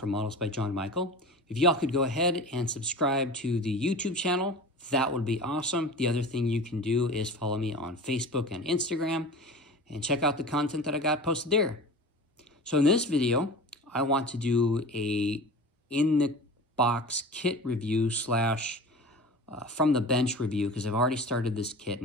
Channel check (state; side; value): normal; both; correlation 0.35